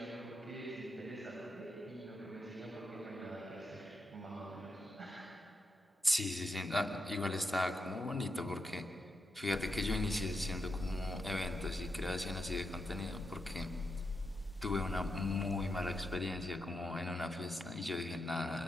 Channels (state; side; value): normal; both; correlation 0.85